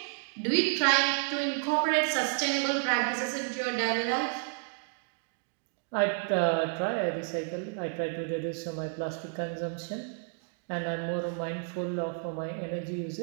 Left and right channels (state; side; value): silent; left; 57 dB below the other